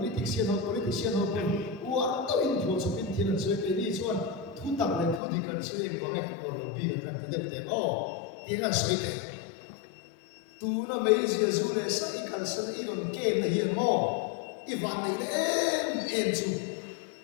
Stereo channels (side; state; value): right; drops out; at 5.2 s